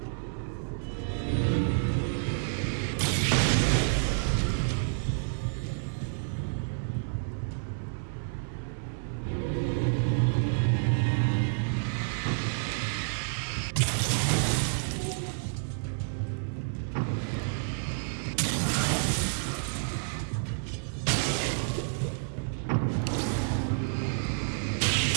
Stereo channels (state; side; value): silent; left; 58 dB below the other